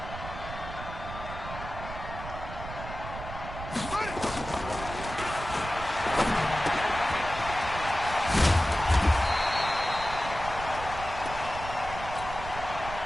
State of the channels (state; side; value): noise; right; rumble, 10 dB below the sound